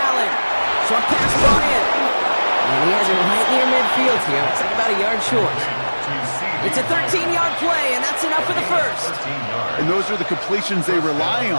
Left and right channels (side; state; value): both; inverted; correlation -1.00